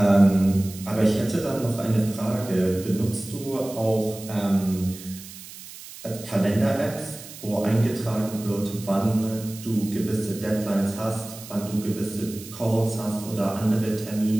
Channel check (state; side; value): noise; right; hiss, 15 dB below the sound